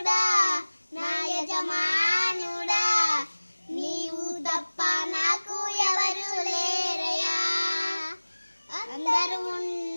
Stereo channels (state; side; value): inverted; both; correlation -1.00